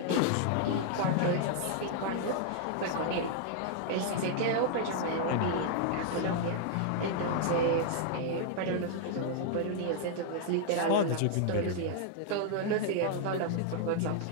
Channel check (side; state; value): both; different; correlation -0.01